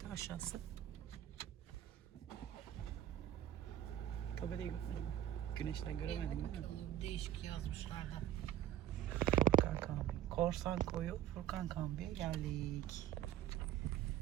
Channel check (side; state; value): left; quieter; 11.9 dB